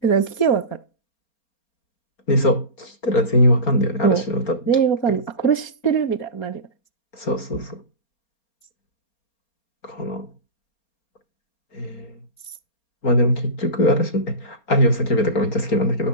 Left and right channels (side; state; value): right; late; 4.3 ms